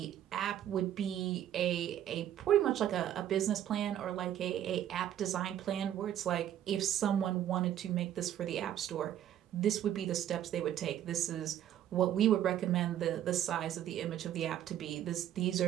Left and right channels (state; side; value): quieter; left; 11.2 dB